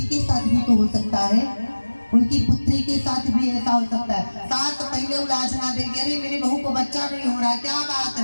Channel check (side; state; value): both; inverted; correlation -1.00